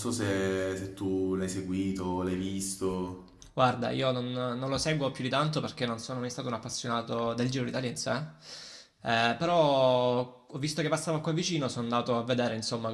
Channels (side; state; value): both; identical; correlation 1.00